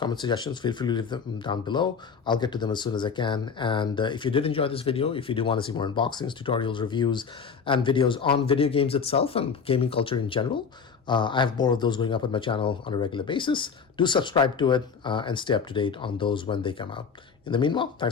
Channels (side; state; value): right; quieter; 6.0 dB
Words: suggestions, feel free to leave them down below. I'll get to them as soon as I can. And if you did enjoy this video, if you do want to see more unboxings, tutorials, reviews, and videos on video games itself and gaming culture in general, I have more of those going up on my channel on a regular basis. Do subscribe to it and stay up to date on those when they come out. In the meanwhile,